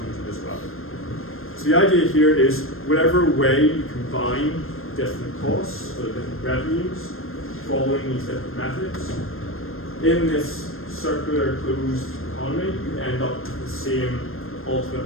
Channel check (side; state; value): right; late; 0.61 ms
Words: as well. So the idea here is whatever way you combine different costs or different revenues following these different methods, in this circular closed economy, you end up with the same